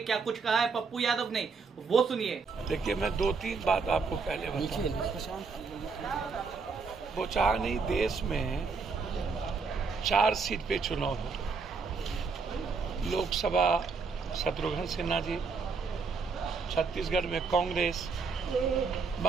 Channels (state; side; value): quieter; left; 4.9 dB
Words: कुछ कहा है पप्पू यादव ने, वो सुनिए। देखिए, मैं 2-3 बात आपको पहले बताऊं। बोचहा नहीं, देश में 4 सीट पे चुनाव हो। लोकसभा शत्रुघ्न सिन्हा जी, छत्तीसगढ़ में कांग्रेस,